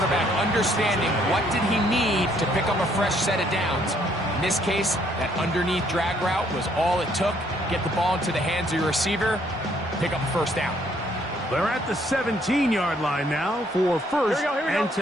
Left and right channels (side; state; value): both; normal; correlation 0.66